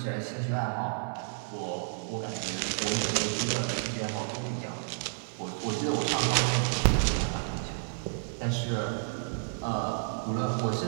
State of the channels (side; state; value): left; silent; 57 dB below the other